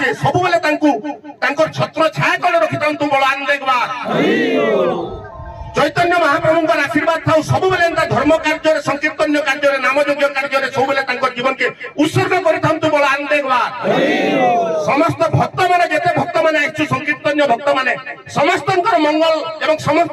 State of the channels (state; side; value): identical; both; correlation 1.00